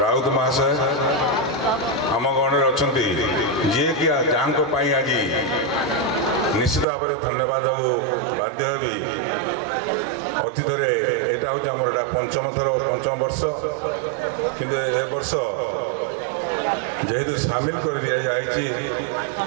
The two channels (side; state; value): left; drops out; at 6.9 s